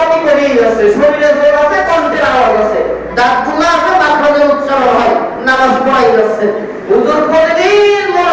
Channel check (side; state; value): both; identical; correlation 1.00